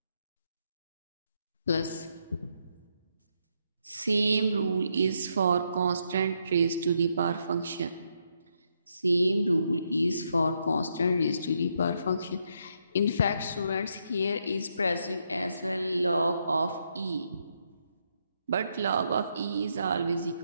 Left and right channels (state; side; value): inverted; both; correlation -0.78